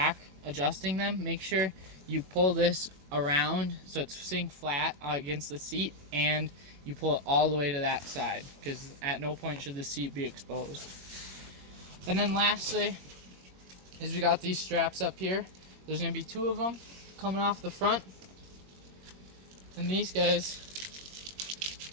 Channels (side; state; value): left; late; 21 ms